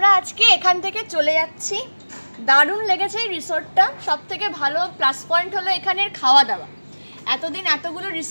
এখান থেকে চলে যাচ্ছি। দারুণ লেগেছে এই রিসোর্টটা। সব থেকে ভালো প্লাস পয়েন্ট হলো এখানের খাওয়া দাওয়া। এতদিন এতগুলো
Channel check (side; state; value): both; inverted; correlation -1.00